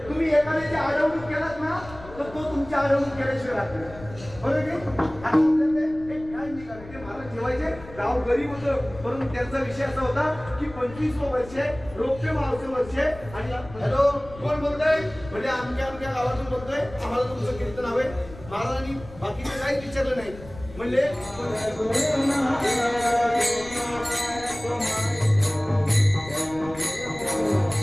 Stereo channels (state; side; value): noise; left; rumble, 17 dB below the sound